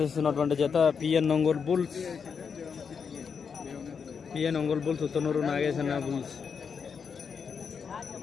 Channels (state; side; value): quieter; right; 6.2 dB